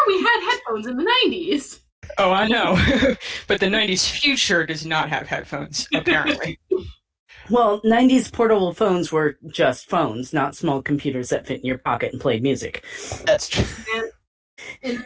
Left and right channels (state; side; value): identical; both; correlation 1.00